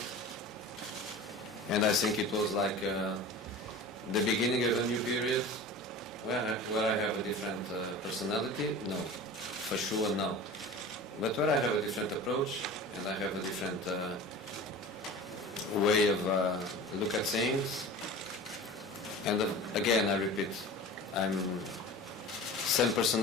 and I think it was like the beginning of a new period where I have a different personality. No, for sure no, but where I have a different approach and I have a different way of look at things. And again, I repeat, I'm same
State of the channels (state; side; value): normal; both; correlation 0.36